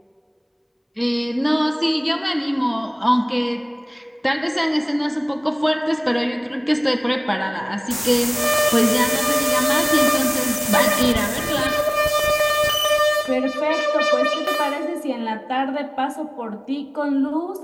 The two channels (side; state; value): both; identical; correlation 1.00